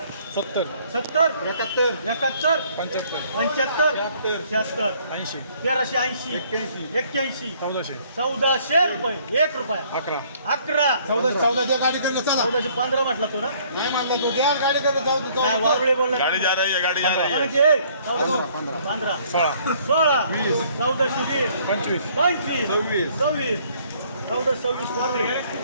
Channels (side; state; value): both; inverted; correlation -0.61